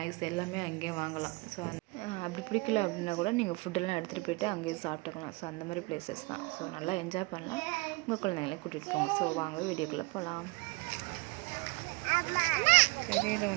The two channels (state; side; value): quieter; left; 25.3 dB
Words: எல்லாமே அங்கேயே வாங்கலாம். ஸோ அப்படி பிடிக்கல அப்படின்னா கூட நீங்கள் ஃபுட்டெல்லாம் எடுத்துகிட்டு போய்ட்டு அங்கேயே சாப்பிட்டுக்கலாம். ஸோ அந்த மாதிரி பிளேசஸ் தான். ஸோ நல்லா என்ஜாய் பண்ணலாம். உங்கள் குழந்தைங்களே கூட்டிகிட்டு போங்க. ஸோ வாங்க வீடியோக்குள்ளே போகலாம். தெரியல